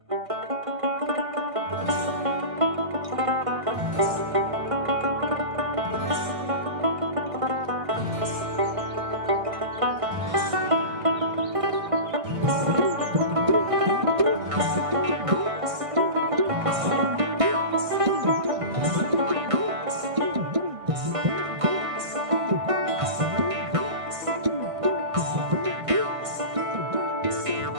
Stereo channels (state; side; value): late; left; 1.6 ms